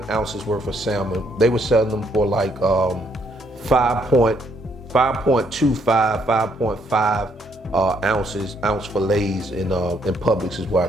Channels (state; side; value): normal; both; correlation 0.71